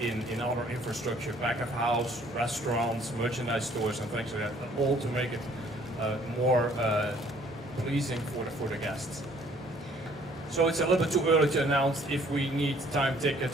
other infrastructure, back of house, restaurants, merchandise stores, and things like that, all to make it more pleasing for the guests. So it's a little bit too early to announce if we need time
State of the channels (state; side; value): normal; both; correlation 0.59